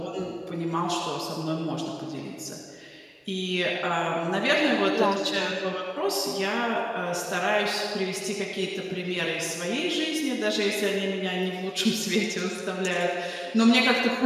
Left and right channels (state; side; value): identical; both; correlation 1.00